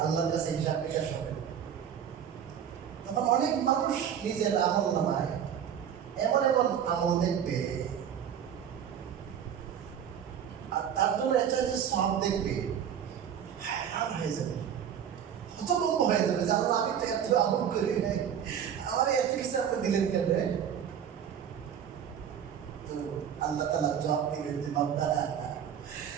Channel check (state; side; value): quieter; left; 8.8 dB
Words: আল্লাহর কাছে হিসাব নিকাশ হবে, তখন অনেক মানুষ নিজের আমল নামায় এমন এমন আমল দেখবে, আর তার জন্য একটা যে সব দেখবে, হায়রান হয়ে যাবে, হতভম্ব হয়ে যাবে যে আল্লাহ আমি তো এত আমল করি নাই, আমার এত কিছু আপনি দিলেন কেন? তো আল্লাহ তাআলা জবাব দিলেন যে বান্দা,